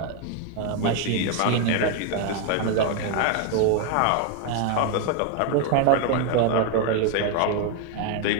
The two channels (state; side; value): different; both; correlation 0.01